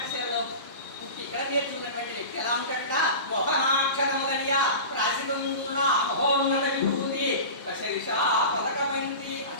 పుట్టి ఇక్కడ నేర్చుకున్నటువంటి వ్యక్తి ఎలా ఉంటాడ? మోహనాక్షరములనియా రాసి కుందునా మహోన్నత విభూతి దశదిశా పదకబంది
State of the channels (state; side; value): inverted; both; correlation -0.31